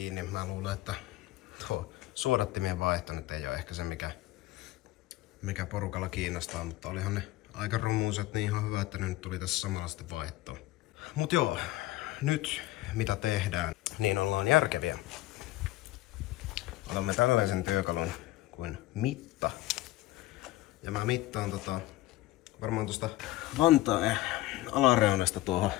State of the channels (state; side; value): quieter; right; 17.1 dB